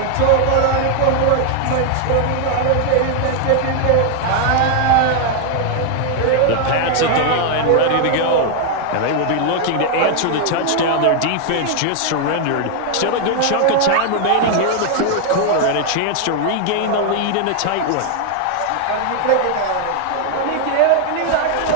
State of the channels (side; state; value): both; different; correlation 0.00